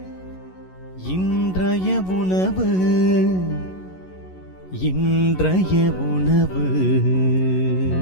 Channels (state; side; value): late; right; 11 ms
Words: இன்றைய உணவு இன்றைய உணவு.